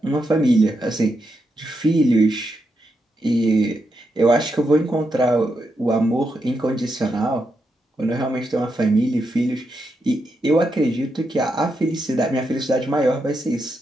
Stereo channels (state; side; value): normal; both; correlation 0.83